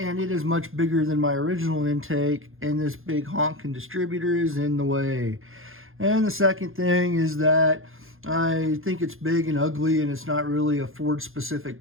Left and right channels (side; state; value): left; late; 0.60 ms